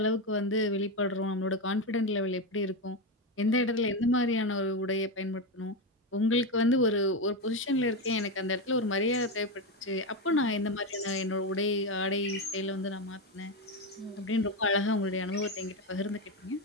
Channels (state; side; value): normal; both; correlation 0.12